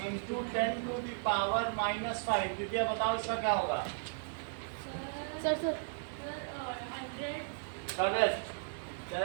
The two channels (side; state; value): left; silent; digital silence